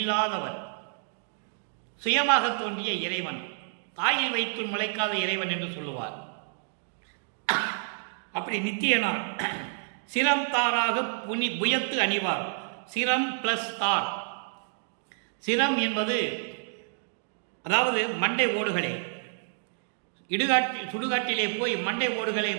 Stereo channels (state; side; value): silent; left; digital silence